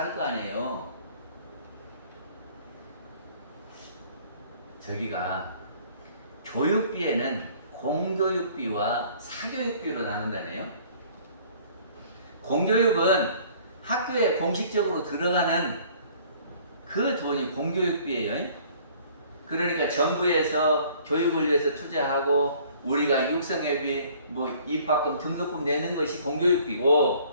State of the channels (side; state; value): both; inverted; correlation -0.55